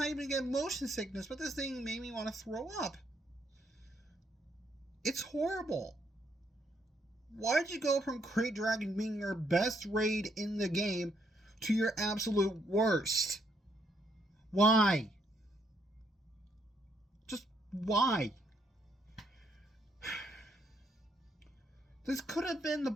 even get motion sickness, but this thing made me want to throw up. It's horrible. Why'd you go from Krayt Dragon being your best raid in the game to your absolute worst? Why? Just why? This could have been the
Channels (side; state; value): both; normal; correlation 0.73